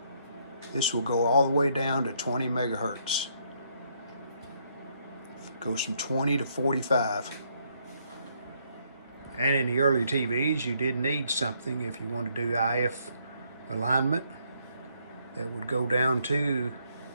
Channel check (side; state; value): both; inverted; correlation -0.71